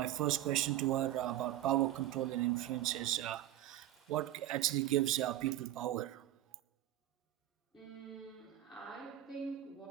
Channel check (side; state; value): left; quieter; 13.5 dB